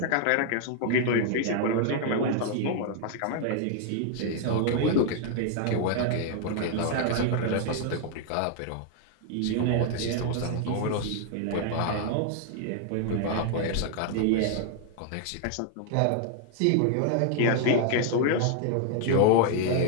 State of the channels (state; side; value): different; both; correlation 0.00